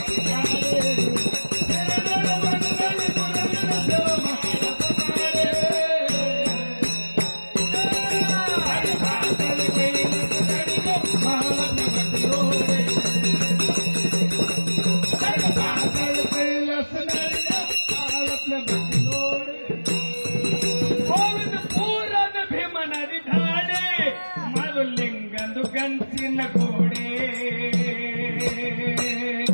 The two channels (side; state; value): both; inverted; correlation -1.00